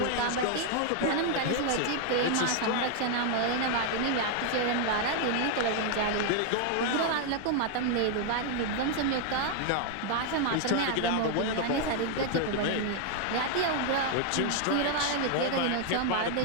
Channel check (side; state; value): both; different; correlation 0.00